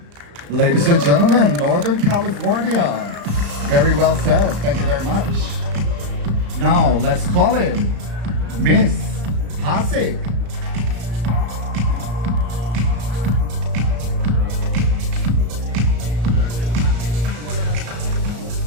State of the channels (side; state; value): left; late; 34 ms